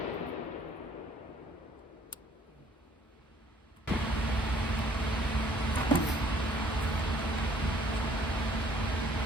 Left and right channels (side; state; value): both; normal; correlation 0.59